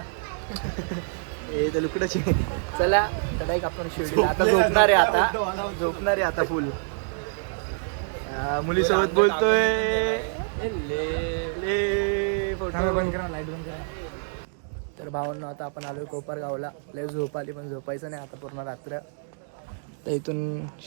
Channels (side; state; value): left; silent; digital silence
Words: ए तर लुकडच आहे. चला चढाई आपण शिर्डीला आता झोपणार आहे आता फुल. मुलीसोबत बोलतोय. ले फोटो बंद करा, लाईट बंद करा. तर भावांनो आता आपण आलोय कोपरगावला. लय झोप आली पण झोपायचं नाही आता पूर्ण रात्र. तर इथून